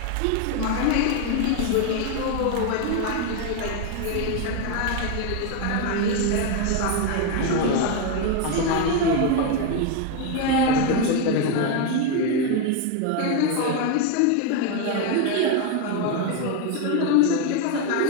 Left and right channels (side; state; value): both; different; correlation 0.02